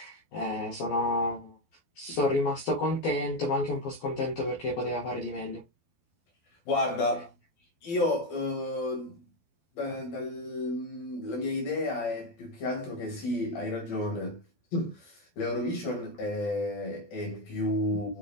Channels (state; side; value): late; right; 12 ms